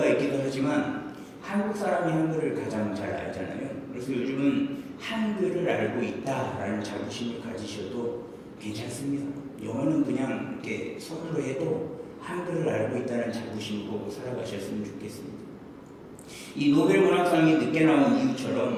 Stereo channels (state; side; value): identical; both; correlation 1.00